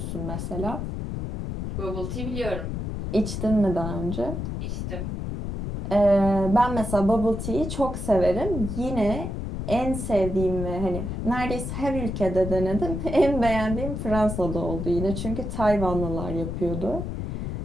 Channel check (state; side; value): noise; left; rumble, 4 dB below the sound